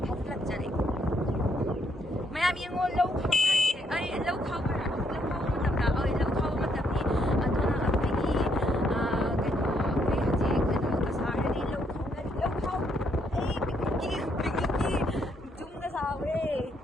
phatlak jare mayam yengo low khau ma tam ni adona apni ke no koi haji ke no ka sare ni low khau picnic ki jum da sawe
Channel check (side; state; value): both; normal; correlation 0.73